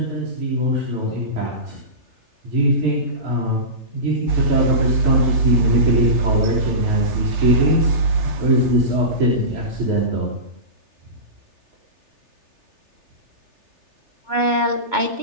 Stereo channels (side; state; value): left; late; 3.3 ms